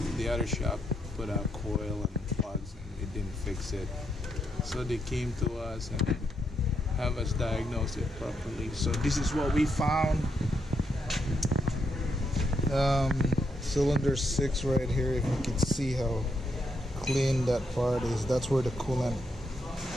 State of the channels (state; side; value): normal; both; correlation 0.79